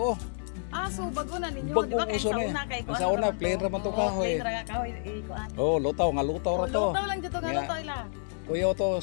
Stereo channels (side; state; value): right; silent; digital silence